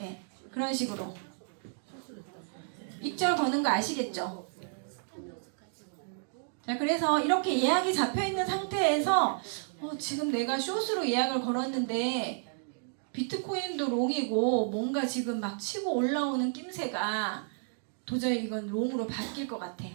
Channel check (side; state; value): left; silent; digital silence